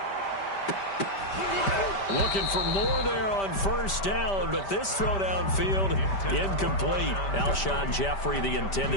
Looking for more there on first down, but this throw downfield incomplete. Alshon Jeffrey, the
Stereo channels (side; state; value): right; late; 5.1 ms